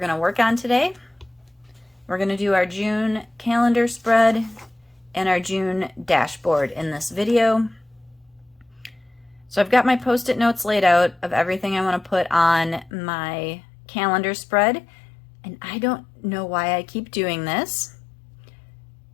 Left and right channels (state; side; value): drops out; right; at 12.9 s